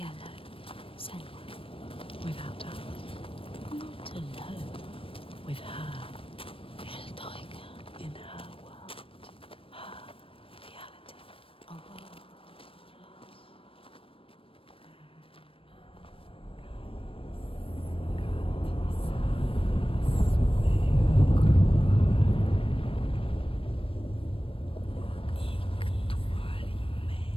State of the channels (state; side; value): late; right; 0.26 ms